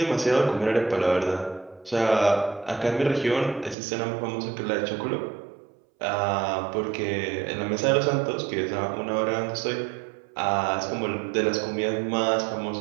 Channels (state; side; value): drops out; left; at 3.8 s